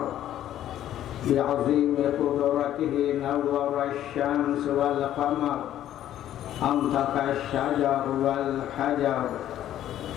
بعظيم قدرته نور الشمس والقمر أنطق الشجر والحجر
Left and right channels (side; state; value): right; quieter; 11.9 dB